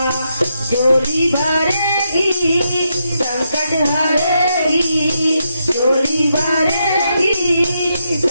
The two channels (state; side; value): inverted; both; correlation -0.82